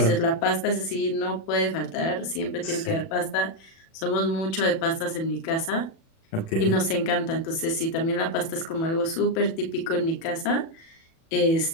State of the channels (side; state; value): right; late; 36 ms